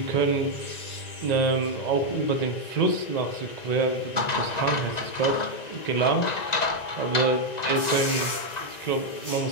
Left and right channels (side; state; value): right; late; 1.9 ms